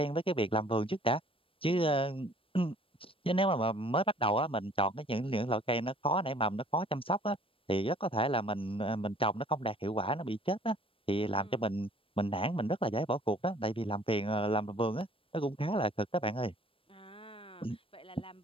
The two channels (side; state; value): right; late; 0.26 ms